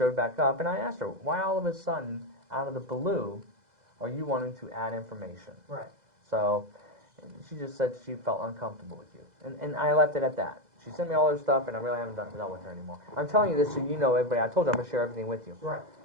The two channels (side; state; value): left; late; 2.0 ms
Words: back up, and I asked her, why all of a sudden, out of the blue, are you wanting to add information? Right. So, she just said she felt uncomfortable with you, and I left it at that. She sent me all her stuff, and I really haven't dealt with her anymore. I'm telling you this so you know, everybody. I told you I'm gonna share everything with you. Right.